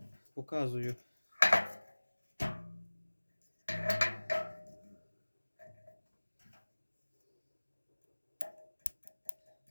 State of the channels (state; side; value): inverted; both; correlation -1.00